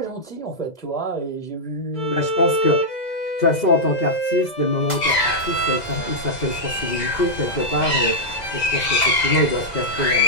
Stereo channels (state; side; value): late; right; 2.0 ms